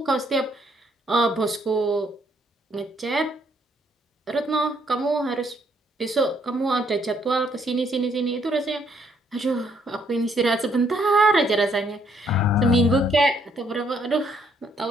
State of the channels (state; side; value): normal; both; correlation 0.69